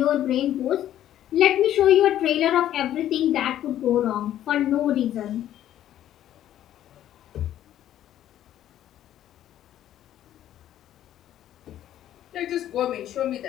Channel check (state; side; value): quieter; right; 11.9 dB